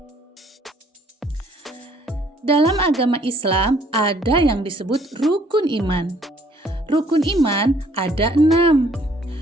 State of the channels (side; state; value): both; normal; correlation 0.62